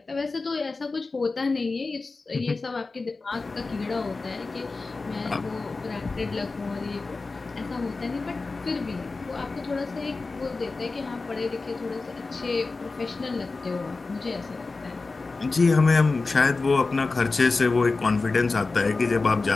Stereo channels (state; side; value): quieter; right; 3.8 dB